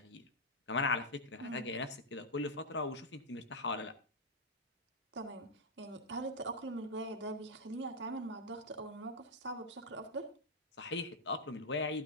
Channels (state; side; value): normal; both; correlation -0.05